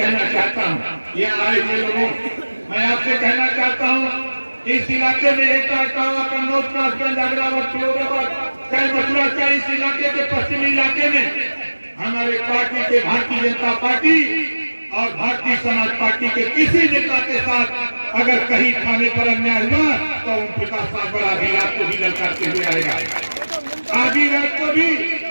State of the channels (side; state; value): both; inverted; correlation -1.00